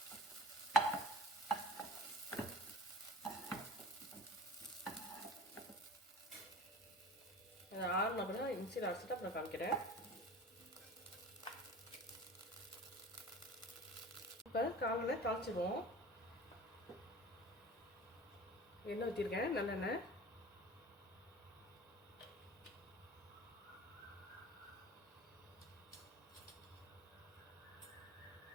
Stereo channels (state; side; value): normal; both; correlation 0.39